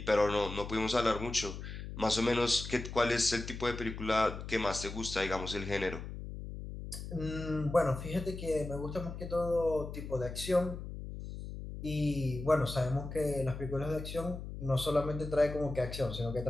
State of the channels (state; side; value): noise; left; hum, 9 dB below the sound